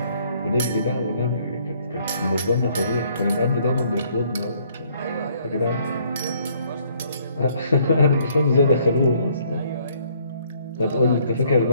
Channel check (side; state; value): both; inverted; correlation -0.64